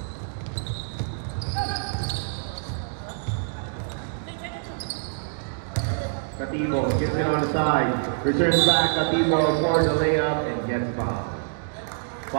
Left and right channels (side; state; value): left; silent; digital silence